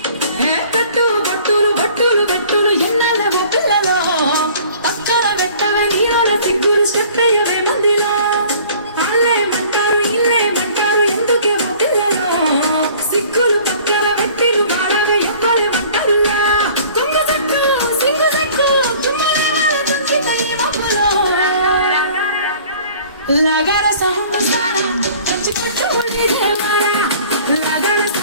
కట్టు బట్టులు బట్టులు బట్టులు ఎన్నాళ్ళ పిల్లలో పక్కన పెట్టవే నీళ్ళ సిగ్గులు స్టెప్ అయ్యవే మందిలో వాళ్ళేమంటారు ఇల్లేమంటారు ఎందుకేమో పిల్లలో సిగ్గులు పక్కన పెట్టిరు వాళ్ళగా ఎవ్వరేమంటారులా తుంగ చెట్టు సింగు చెట్టు చుమ్మలే వాళ్ళ తుంచితయ్య మబ్బులో లగార సౌండ్ సారా కంచి పట్టు ఉండి దేవారా లగార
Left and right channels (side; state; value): both; inverted; correlation -0.50